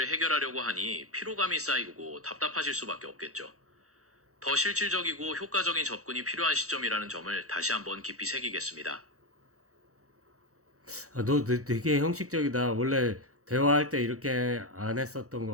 해결하려고 하니 피로감이 쌓이고 답답하실 수밖에 없겠죠. 더 실질적이고 효과적인 접근이 필요한 시점이라는 점을 다시 한번 깊이 새기겠습니다. 아, 너 되게 형식적이다. 원래 대화할 때 이렇게 안 했었던 것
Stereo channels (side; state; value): left; late; 0.65 ms